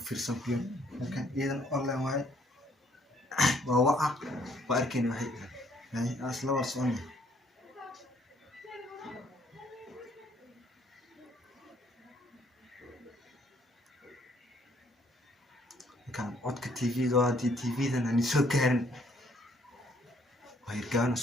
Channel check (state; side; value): normal; both; correlation 0.65